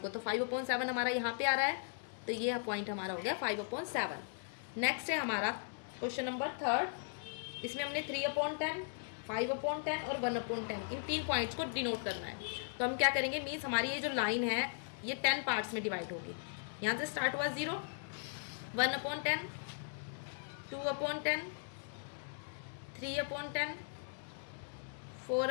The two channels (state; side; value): silent; right; digital silence